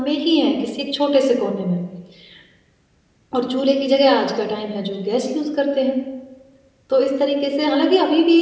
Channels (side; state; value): both; identical; correlation 1.00